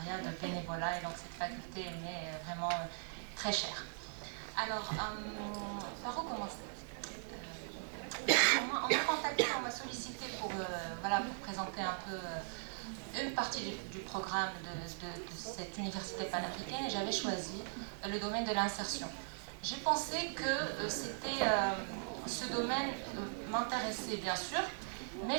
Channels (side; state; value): left; silent; digital silence